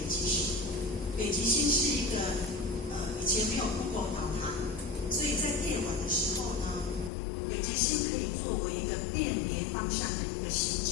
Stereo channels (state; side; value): drops out; right; at 7.1 s